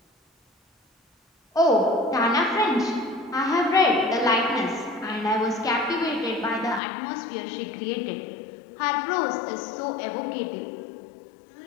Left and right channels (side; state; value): right; drops out; at 6.8 s